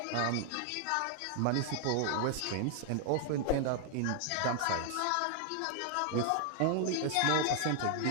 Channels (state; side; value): different; both; correlation 0.00